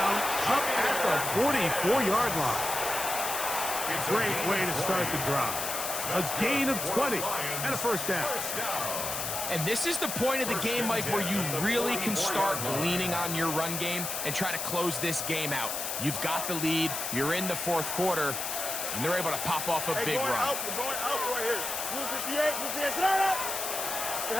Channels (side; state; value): left; noise; hiss, 3 dB below the sound